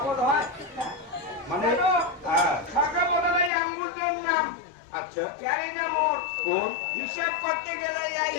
হয় মানে হ্যাঁ ছাকা বদলাই আঙ্গুলটার নাম আচ্ছা ক্যারি না মোর কোন হিসাব করতে গেলে এই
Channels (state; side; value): drops out; right; at 3.5 s